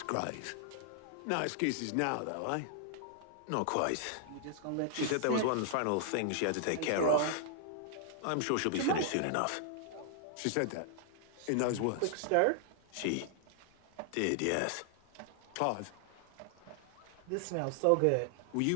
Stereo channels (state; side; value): different; both; correlation 0.00